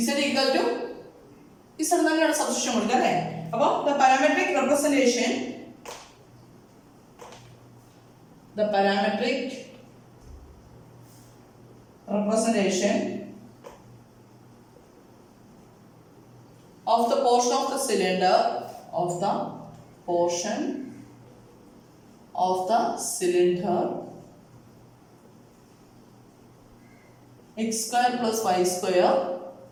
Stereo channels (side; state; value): both; identical; correlation 1.00